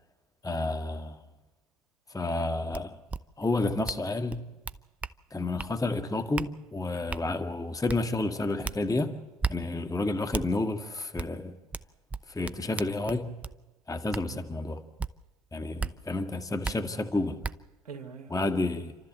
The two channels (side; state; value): both; normal; correlation 0.79